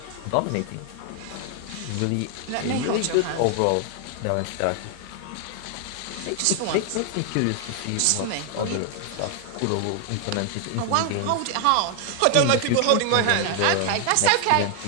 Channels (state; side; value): different; both; correlation 0.00